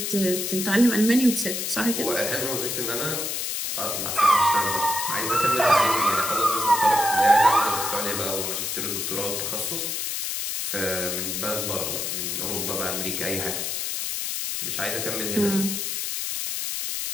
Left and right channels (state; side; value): noise; left; hiss, 2 dB below the sound